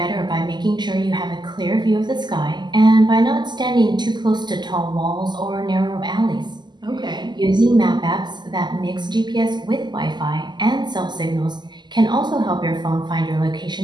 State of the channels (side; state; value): left; late; 0.21 ms